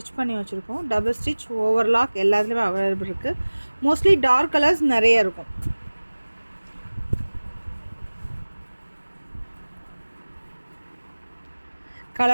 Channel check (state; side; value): inverted; both; correlation -1.00